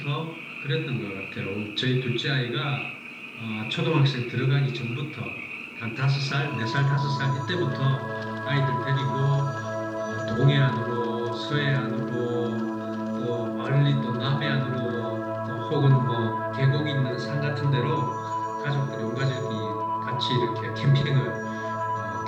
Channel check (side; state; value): both; identical; correlation 1.00